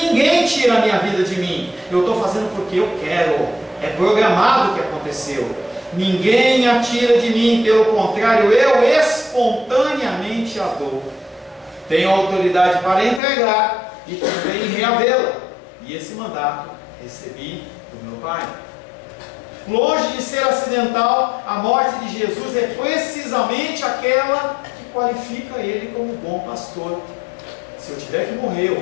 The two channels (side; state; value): right; drops out; at 13.2 s